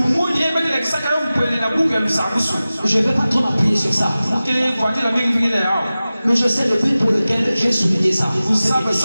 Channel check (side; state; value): both; inverted; correlation -0.96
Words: Je ne vais pas trop m'appuyer sur ça. Mais je sais le but pour lequel j'ai souligné ça.